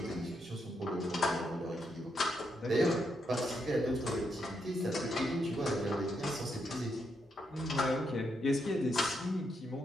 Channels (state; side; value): normal; both; correlation 0.80